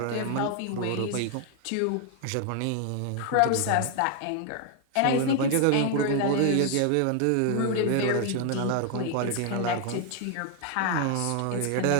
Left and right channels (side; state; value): both; different; correlation 0.00